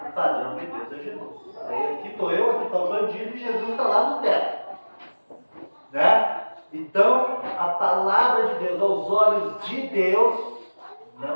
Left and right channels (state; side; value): inverted; both; correlation -1.00